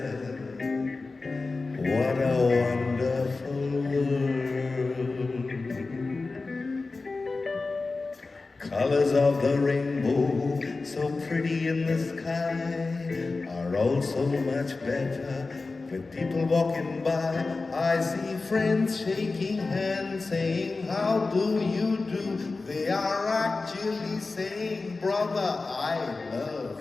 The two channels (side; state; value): right; quieter; 3.7 dB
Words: what a wonderful world. Colors of the rainbow, so pretty in the sky, are also much better with people walking by. I see friends shaking hands, saying, how do you do? They are actually saying, brother, I love